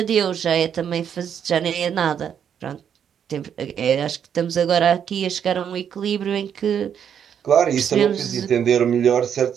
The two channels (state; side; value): quieter; left; 8.4 dB